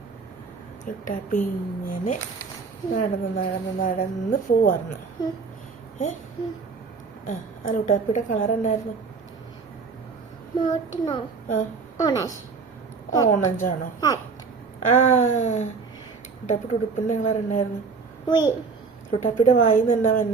ലുട്ടാപ്പി ഇങ്ങനെ നടന്ന് പോവായിരുന്നു. ആ ലുട്ടാപ്പിയുടെ കളർ എന്നായിരുന്നു? ഓറഞ്ചാണോ? ലുട്ടാപ്പിയുടെ ഉടുപ്പിന്റെ കളർ എന്നായിരുന്നു? ലുട്ടാപ്പിയുടെ വായിന്ന് എന്നാ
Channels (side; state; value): left; quieter; 4.9 dB